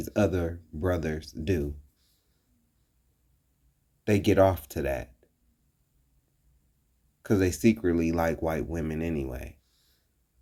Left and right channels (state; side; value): identical; both; correlation 1.00